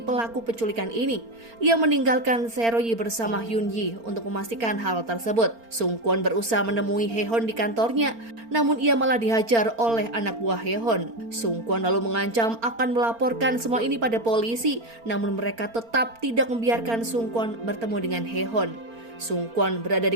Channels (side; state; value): left; late; 4.4 ms